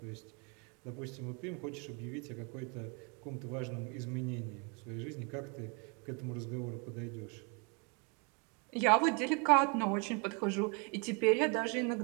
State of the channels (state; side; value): quieter; left; 34.0 dB